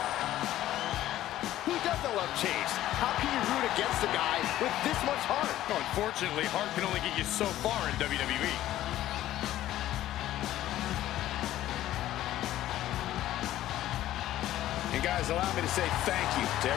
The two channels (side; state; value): right; quieter; 13.8 dB